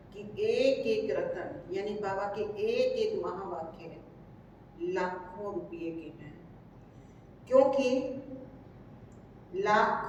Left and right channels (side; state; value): both; identical; correlation 1.00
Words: कि एक एक रत्न यानी बाबा के एक एक महावाक्य लाखों रुपये के हैं, क्योंकि